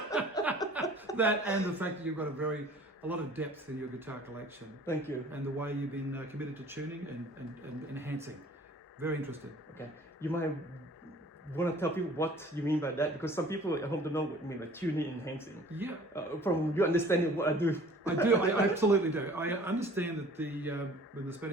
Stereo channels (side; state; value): both; normal; correlation 0.49